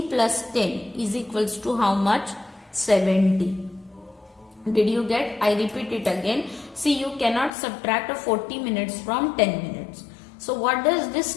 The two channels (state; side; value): drops out; right; at 7.5 s